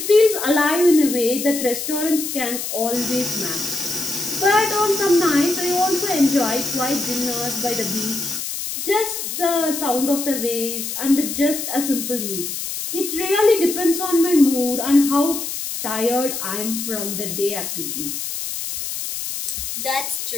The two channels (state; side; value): noise; left; hiss, 5 dB below the sound